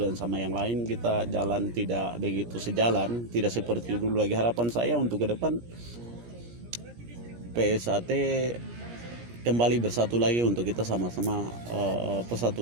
sama yang lain. Kita jalan tidak begitu sejalan, tidak seperti dulu lagi. Harapan saya untuk ke depan PSHT kembali bersatu lagi untuk kita sama-sama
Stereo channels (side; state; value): left; late; 17 ms